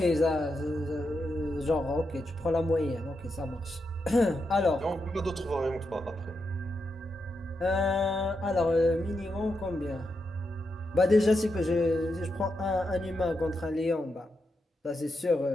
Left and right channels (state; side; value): normal; both; correlation 0.85